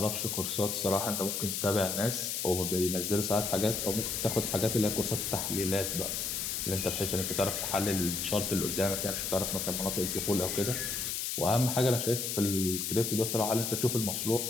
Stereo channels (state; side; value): noise; left; hiss, 2 dB below the sound